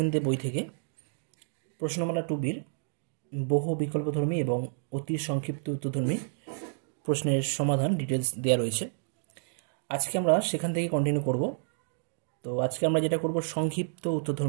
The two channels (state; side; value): silent; left; digital silence